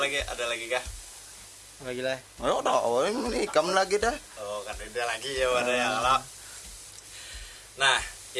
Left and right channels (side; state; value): both; identical; correlation 1.00